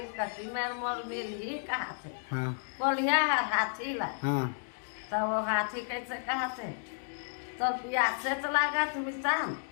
कटी में मोल मिर्गी कहा थे हाँ कोलिया हाथी ला। हाँ तब वो हाथी कैसे कहा थे तो प्यास से तो लगा थे मितान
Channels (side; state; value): right; silent; digital silence